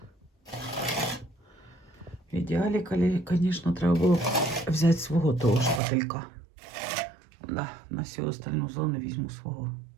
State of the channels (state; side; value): drops out; left; at 5.8 s